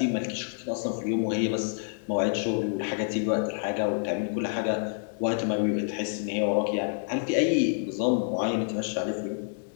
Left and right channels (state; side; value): silent; right; 59 dB below the other